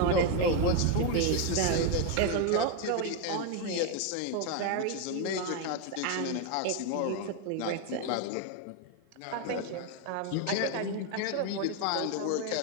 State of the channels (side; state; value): both; different; correlation 0.01